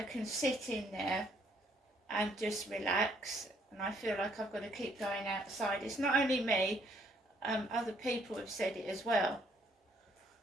can sit in there and just relax, and I feel like I've got to keep going outside. It's not only me, other people have said it as well.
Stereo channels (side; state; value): both; normal; correlation 0.67